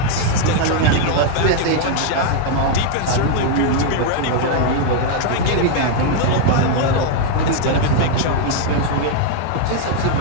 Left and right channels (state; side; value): different; both; correlation 0.00